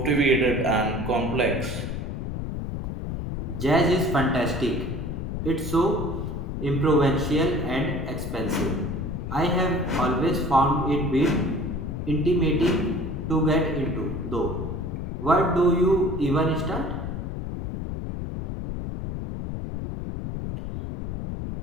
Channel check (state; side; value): noise; left; rumble, 5 dB below the sound